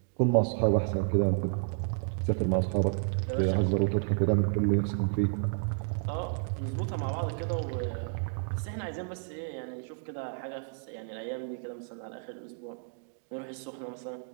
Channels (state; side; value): silent; left; 57 dB below the other